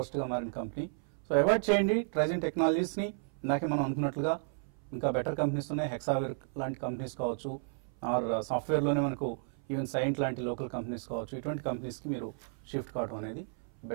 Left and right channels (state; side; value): silent; left; 56 dB below the other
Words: గా మారిన కంపెనీ. సో అవాయిడ్ చేయండి ట్రైజిన్ టెక్నాలజీస్ ని. ఇందాకే మనం అనుకున్నట్లుగా ఇంకా బెటర్ కంపెనీస్ ఉన్నాయి. హెక్సావేర్ లాంటి కంపెనీస్ కావచ్చు, ఆర్ సాఫ్ట్వేర్ లోనే మనకు ఈవెన్ సైంట్ లాంటి లోకల్ కంపెనీస్ కావచ్చు. ఇటువంటి కంపెనీస్ కి మీరు షిఫ్ట్ కావడం అనేది